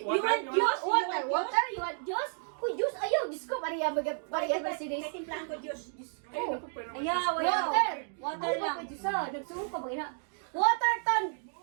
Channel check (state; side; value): silent; left; 57 dB below the other